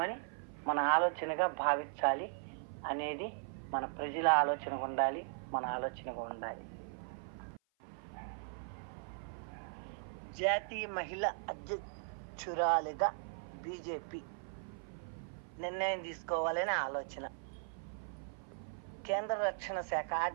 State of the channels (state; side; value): silent; left; 52 dB below the other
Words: మన ఆలోచనగా భావించాలి అనేది మన ప్రజల ఆలోచనగా ఉండాలి, మన ఆలోచనగా ఉండాలి. జాతీయ మహిళా అధ్యక్షురాలిగా బీజేపీ నిర్ణయం తీసుకోవాలనే ఆలోచన. కేంద్ర రక్షణ శాఖ